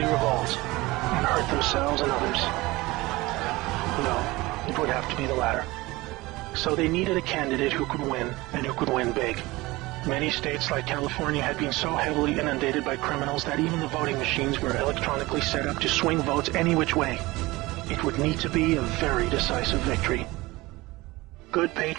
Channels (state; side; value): quieter; left; 20.8 dB